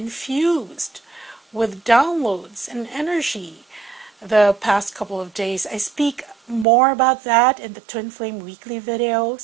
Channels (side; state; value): left; drops out; at 6.7 s